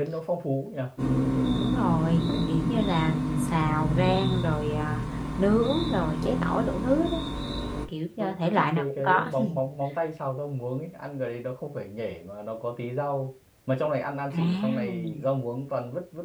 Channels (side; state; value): both; identical; correlation 1.00